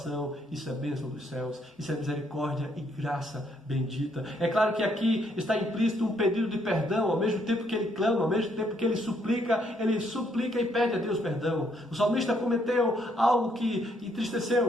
isso é bênção dos céus, isso é misericórdia e graça bendita. É claro que aqui está implícito um pedido de perdão, ao mesmo tempo que Ele clama, ao mesmo tempo que Ele suplica e pede a Deus perdão. O salmista cometeu algo que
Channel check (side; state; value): both; normal; correlation 0.71